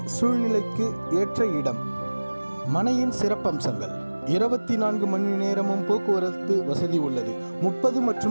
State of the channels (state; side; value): inverted; both; correlation -1.00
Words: சூழ்நிலைக்கு ஏற்ற இடம். மனையின் சிறப்பம்சங்கள்: 24 மணி நேரமும் போக்குவரத்து வசதி உள்ளது. 30